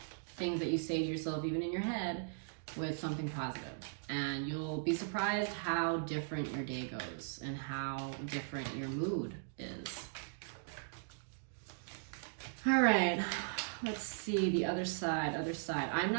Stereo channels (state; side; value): silent; left; digital silence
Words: things that you say to yourself, even in your head, with something positive. And you'll be surprised how different your day goes and how different your mood is. All right. Let's see the other side, I'm